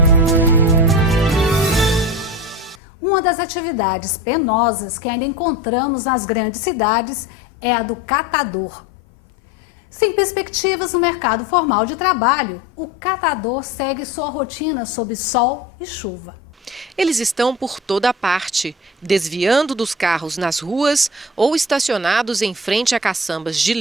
Uma das atividades penosas que ainda encontramos nas grandes cidades é a do catador. Sem perspectivas no mercado formal de trabalho, o catador segue sua rotina sob sol e chuva. Eles estão por toda parte, desviando dos carros nas ruas ou estacionados em frente a caçambas de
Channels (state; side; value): normal; both; correlation 0.32